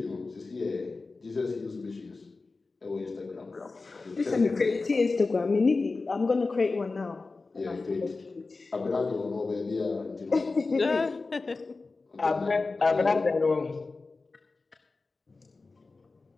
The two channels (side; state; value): right; quieter; 3.8 dB